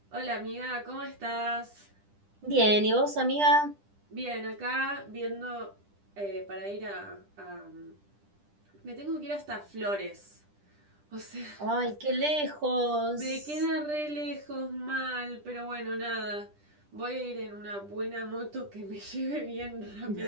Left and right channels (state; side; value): late; left; 10 ms